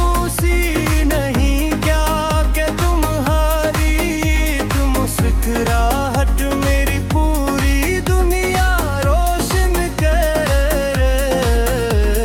ही नहीं क्या कि तुम्हारी मुस्कुराहट मेरी पूरी दुनिया रोशन कर,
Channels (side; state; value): both; identical; correlation 1.00